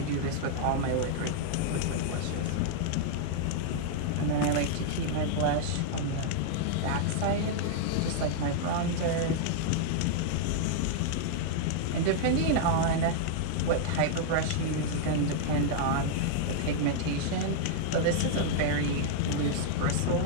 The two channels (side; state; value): both; different; correlation -0.01